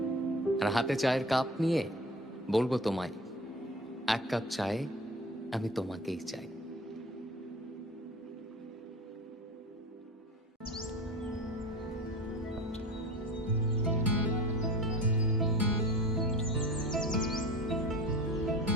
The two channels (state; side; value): normal; both; correlation 0.37